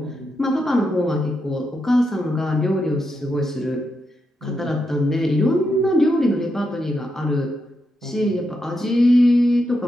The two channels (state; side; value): normal; both; correlation 0.84